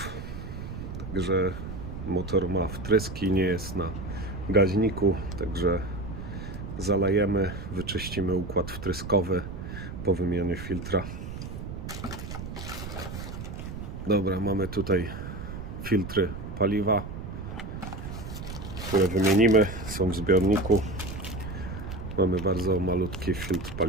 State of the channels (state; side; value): noise; right; rumble, 8 dB below the sound